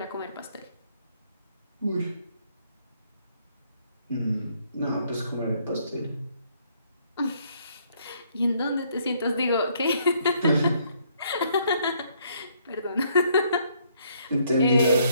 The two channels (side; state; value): both; inverted; correlation -0.68